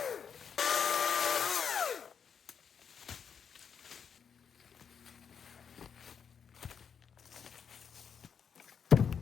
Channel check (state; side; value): quieter; right; 7.0 dB